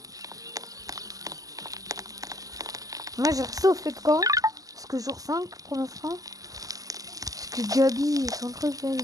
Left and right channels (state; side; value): late; left; 0.17 ms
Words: Moi, j'ai reçu au fait de camp. Parce que jour 5 pour l'instant. Parce que Gabi, son truc, là,